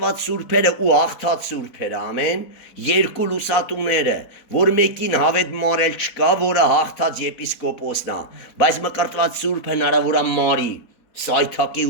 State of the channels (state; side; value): late; right; 4.4 ms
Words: սուրբերը ու հաղթած սուրբերը, ամեն, 2 լուսատուները, որ մեկին հավետ մարել չկա, որը հաղթած եպիսկոպոսն է, բայց մկրտված սուրբ հնարավոր է մարի, սայթակի